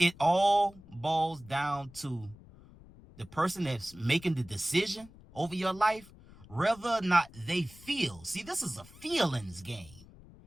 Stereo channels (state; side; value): noise; left; rumble, 21 dB below the sound